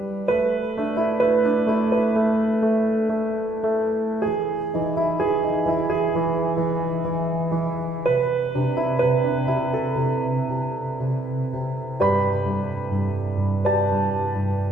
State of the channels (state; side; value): normal; both; correlation 0.72